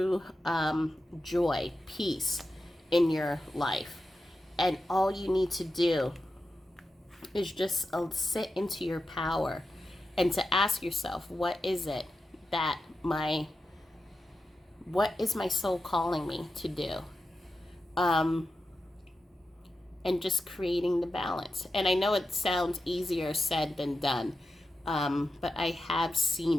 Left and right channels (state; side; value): normal; both; correlation 0.90